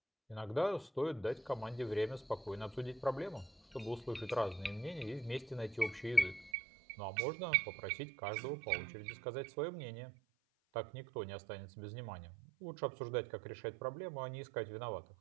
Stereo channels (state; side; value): drops out; left; at 6.5 s